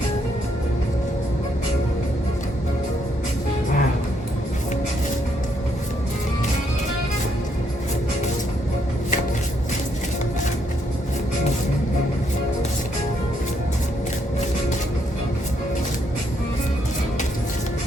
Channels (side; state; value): both; normal; correlation 0.74